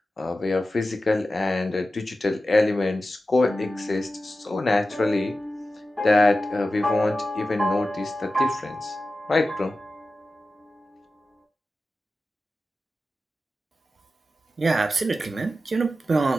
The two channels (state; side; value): normal; both; correlation 0.93